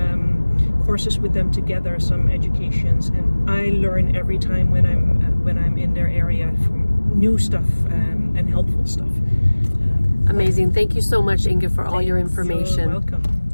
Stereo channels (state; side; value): inverted; both; correlation -1.00